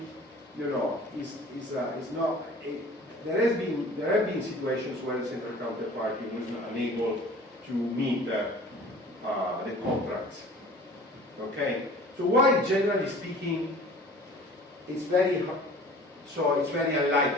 is not, there have been situations where the central counterparty was unable to meet the contracts. Okay? So while generally speaking, it's very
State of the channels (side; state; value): both; normal; correlation 0.46